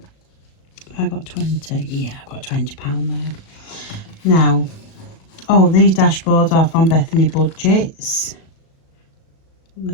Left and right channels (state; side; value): late; right; 36 ms